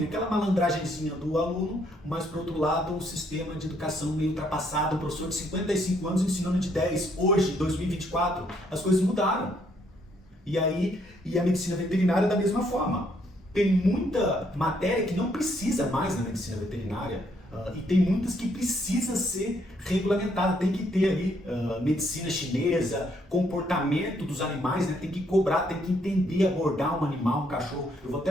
aquela malandragenzinha do aluno, mas por outro lado um sistema de educação meio ultrapassado, um professor de 55 anos ensinando de 10, hoje, 2024, as coisas mudaram. E a medicina veterinária da mesma forma. Tem muita matéria que não precisa mais na medicina veterinária, e tem muitas que precisa ser regulamentada, tem que ter ali medicina chinesa, comportamento dos animais, né? Tem que cobrar, tem que entender, abordar um animal, um cachorro. Eu vou até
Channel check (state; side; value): normal; both; correlation 0.70